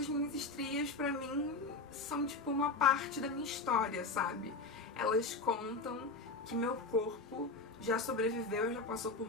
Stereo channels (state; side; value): quieter; right; 3.7 dB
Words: minhas estrias, pra mim, são tipo uma parte da minha história, sabe? Elas contam que meu corpo já sobreviveu, já passou